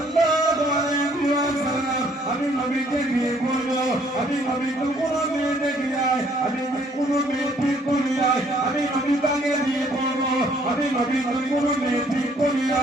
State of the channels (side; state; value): both; normal; correlation 0.63